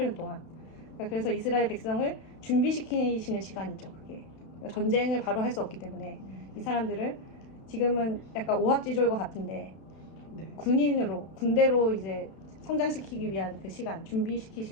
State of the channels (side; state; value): right; late; 32 ms